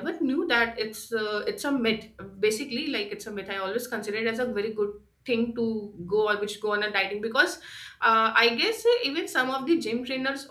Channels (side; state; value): both; identical; correlation 1.00